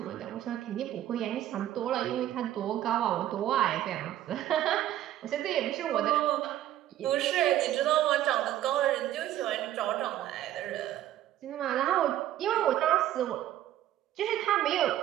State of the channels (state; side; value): quieter; left; 12.8 dB